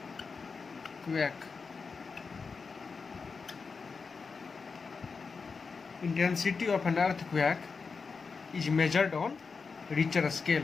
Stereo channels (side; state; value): right; quieter; 4.9 dB